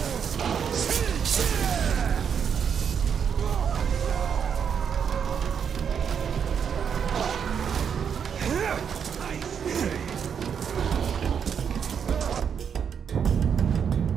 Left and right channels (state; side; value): quieter; left; 7.4 dB